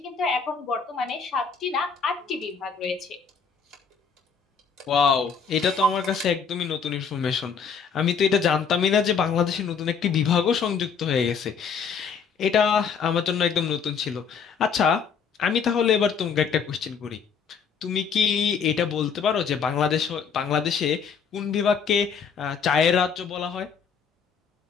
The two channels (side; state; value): right; quieter; 6.2 dB